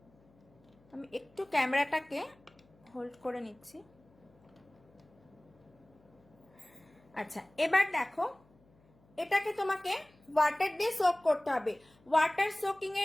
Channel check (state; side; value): noise; left; hum, 30 dB below the sound